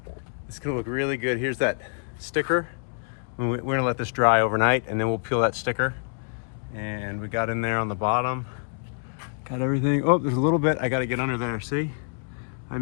It's gonna look really good. Here's that sticker. We're gonna let this dry overnight and then we'll peel that sticker. And we got in there on the bottom. Got everything. Oh, there's a little bit. I gotta get under there, see? I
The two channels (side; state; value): right; silent; 61 dB below the other